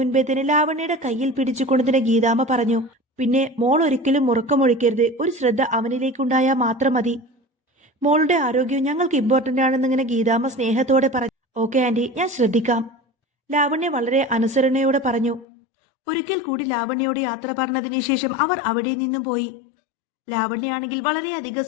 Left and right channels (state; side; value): drops out; right; at 15.5 s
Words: തന്നെ ലാവണ്യയുടെ കയ്യിൽ പിടിച്ചുകൊണ്ടതിന് ഗീതാമ്മ പറഞ്ഞു. പിന്നെ മോൾ ഒരിക്കലും ഉറക്കമൊഴിക്കരുത്. ഒരു ശ്രദ്ധ അവനിലേക്കുണ്ടായാൽ മാത്രം മതി. മോളുടെ ആരോഗ്യം ഞങ്ങൾക്ക് ഇമ്പോർട്ടന്റ് ആണെന്നിങ്ങനെ ഗീതാമ്മ സ്നേഹത്തോടെ പറഞ്ഞു. ഓക്കെ ആന്റി, ഞാൻ ശ്രദ്ധിക്കാം. ലാവണ്യ വളരെ അനുസരണയോടെ പറഞ്ഞു. ഒരിക്കൽ കൂടി ലാവണ്യയോട് യാത്ര പറഞ്ഞതിന് ശേഷം അവർ അവിടെ നിന്നും പോയി. ലാവണ്യാണെങ്കിൽ വളരെയധികം